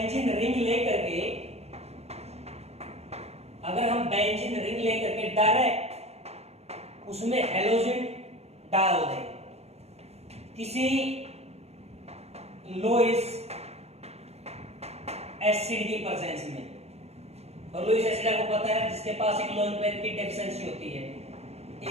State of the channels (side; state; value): left; late; 0.31 ms